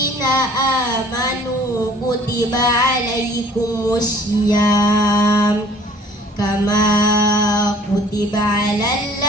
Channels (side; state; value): both; normal; correlation 0.54